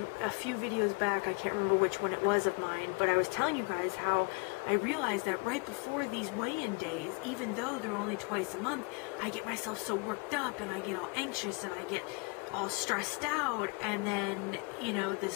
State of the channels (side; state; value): right; quieter; 33.9 dB